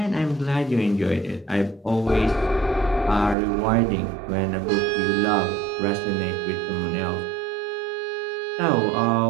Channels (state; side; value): drops out; left; at 3.4 s